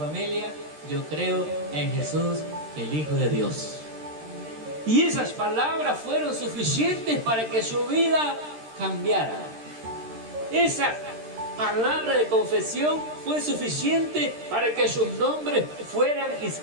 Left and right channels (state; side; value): late; left; 13 ms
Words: yo creo en Jesús, el Hijo de Dios. Y esas palabras fueron suficientes para que su vida cambiara. Esa palabra de confesión fue suficiente para que sus nombres fueran